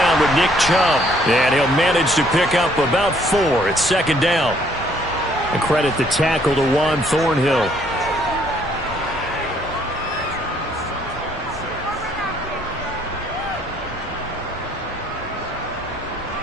with Nick Chubb, and he'll manage to pick up about 4 at 2nd down. And credit the tackle to Juan Thornhill.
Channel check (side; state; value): both; normal; correlation 0.65